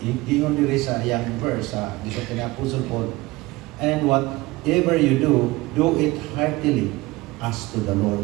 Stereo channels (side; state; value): left; quieter; 20.7 dB